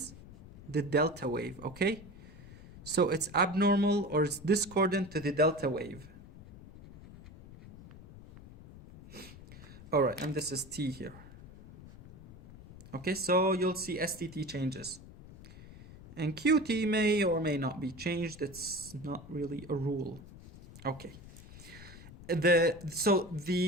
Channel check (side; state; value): left; noise; rumble, 18 dB below the sound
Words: the delta wave, okay? So it's abnormal or it's discordant to the delta wave. All right, and this is T here. Okay, so you'll see STT changes. And QT may or may not be changed. It's not really a rule. Okay. So